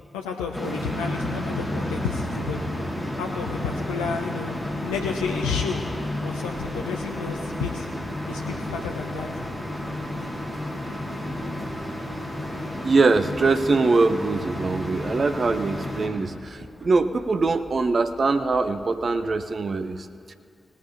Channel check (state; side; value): normal; both; correlation 0.85